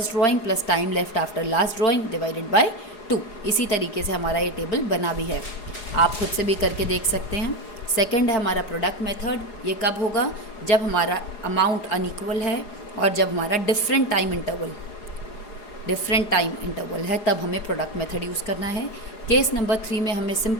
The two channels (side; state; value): right; late; 4.8 ms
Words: drawing plus time left after last drawing divided by 2। इसी तरीके से हमारा ये टेबल बना भी है, आप खुद से भी करके देख सकते हैं। सेकंड है हमारा प्रोडक्ट मेथड, ये कब होगा, जब हमारा अमाउंट अनइक्वल है और जब हमारा डिफरेंट टाइम इंटरवल है, तब हमें प्रोडक्ट मेथड यूज़ करना है। केस नंबर 3 में हमें